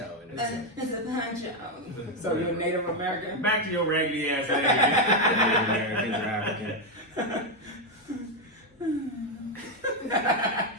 It's a poncho. So you're Native American? Back to your raggedy ass. Americans are African.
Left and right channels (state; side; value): normal; both; correlation 0.05